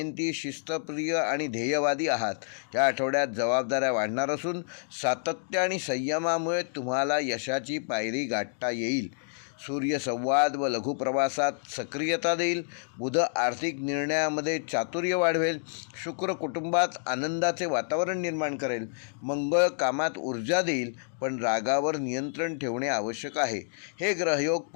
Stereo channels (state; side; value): silent; right; digital silence